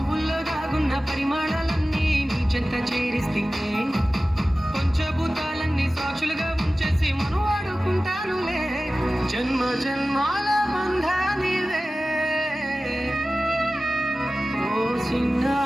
దాగున్న పరిమాణాలన్నీ నీ చెంత చేరిస్తేనే పంచభూతాలన్నీ సాక్షులుగా ఉంచేసి మనం ఆడుకుంటానులే జన్మ జన్మాల బంధానివే ఓ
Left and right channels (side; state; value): both; normal; correlation 0.96